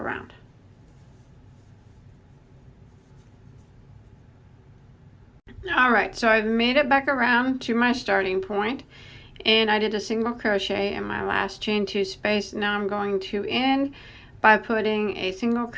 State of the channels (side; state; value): both; identical; correlation 1.00